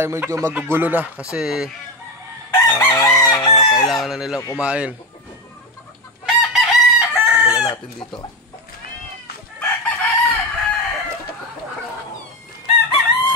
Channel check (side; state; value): both; normal; correlation 0.15